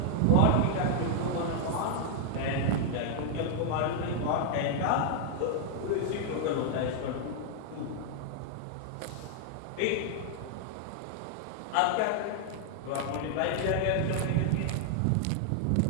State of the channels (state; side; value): different; both; correlation 0.00